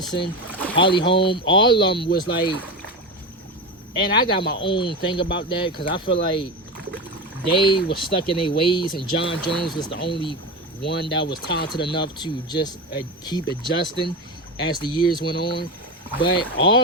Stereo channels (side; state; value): both; normal; correlation 0.21